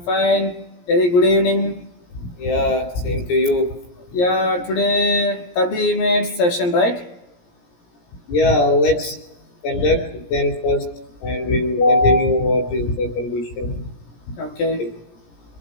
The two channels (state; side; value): late; right; 17 ms